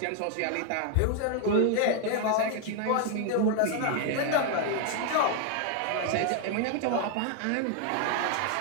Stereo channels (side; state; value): both; different; correlation 0.00